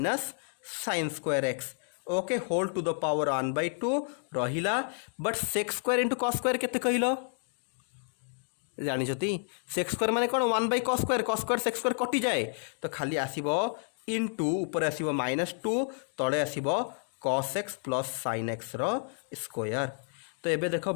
sin square x okay whole to the power 1/2 रहिला but sec square into cos square केते कहलो जानिछती सेक स्क्वायर माने कोन 1/cos स्क्वायर सेक स्क्वायर कटि जाए तो खाली आसीबो इनटू ऊपर आसीबो -2 तळे आसीबो cos x plus sin x रो स्क्वायर। तो एबे देखो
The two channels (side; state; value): right; silent; 57 dB below the other